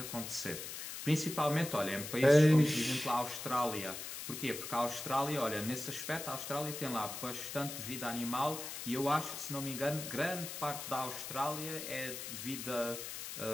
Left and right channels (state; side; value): noise; left; hiss, 7 dB below the sound